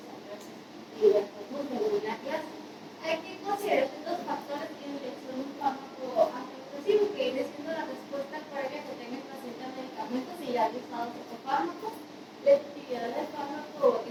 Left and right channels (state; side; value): identical; both; correlation 1.00